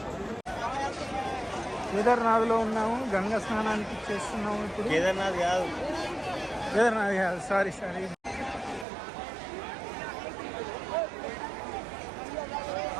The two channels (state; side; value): drops out; left; at 8.8 s